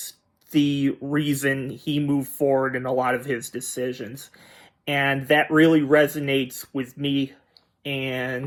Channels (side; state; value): both; identical; correlation 1.00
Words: the reason he moved forward in a lot of his decisions. And that really resonates with me.